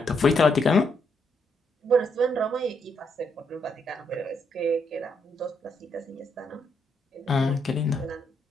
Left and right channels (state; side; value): normal; both; correlation 0.76